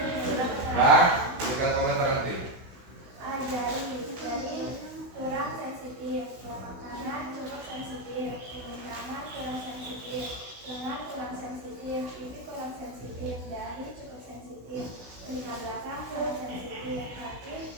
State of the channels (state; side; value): late; left; 16 ms